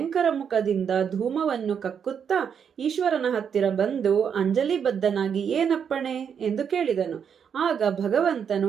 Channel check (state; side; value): quieter; left; 7.5 dB